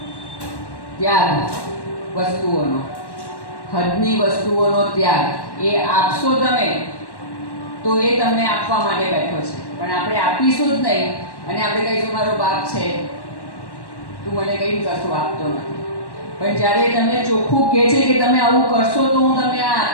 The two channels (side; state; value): right; late; 1.1 ms